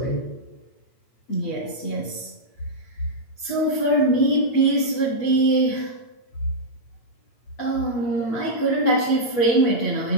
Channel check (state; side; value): late; right; 8.7 ms